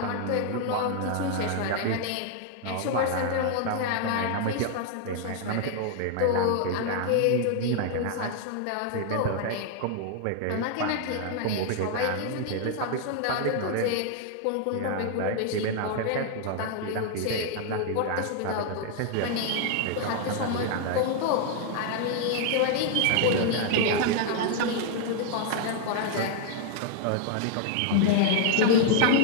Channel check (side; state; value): both; different; correlation 0.00